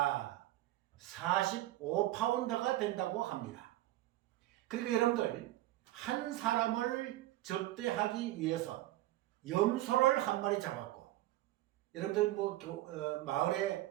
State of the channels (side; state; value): left; quieter; 16.2 dB